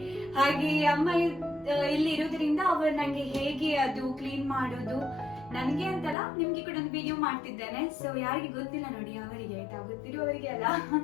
ಹಾಗೆ ಅಮ್ಮ ಇಲ್ಲಿ ಇರೋದ್ರಿಂದ ಅವರು ನಂಗೆ ಹೇಗೆ ಅದು ಕ್ಲೀನ್ ಮಾಡೋದು, ನನ್ಗೆ ಅಂತಲ್ಲ ನಿಮ್ಗೆ ಕೂಡ ಒಂದು ವಿಡಿಯೋ ಮಾಡ್ತಿದ್ದೇನೆ. ಸೊ ಯಾರಿಗೆ ಗೊತ್ತಿಲ್ಲ ನೋಡಿ ಅವರಿಗೆ ಆಯ್ತಾ, ಗೊತ್ತಿರುವವರಿಗೆ ಅಲ್ಲ.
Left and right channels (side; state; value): right; drops out; at 6.2 s